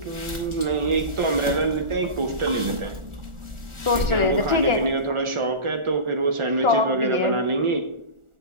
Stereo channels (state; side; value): late; left; 1.4 ms